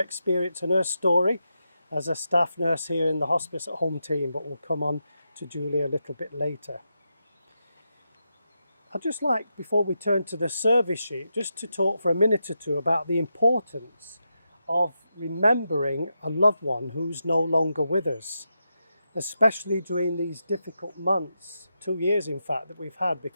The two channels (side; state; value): both; inverted; correlation -0.86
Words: and her story as a staff nurse here in the Hospice at Home team, but we'll come on to Julie a little bit later. I'd just like, before we turn to the service sheet, just to talk for a minute or two about the importance of remembering a loved one who's no longer with us, especially during these difficult months, 2 years in fact, that we've had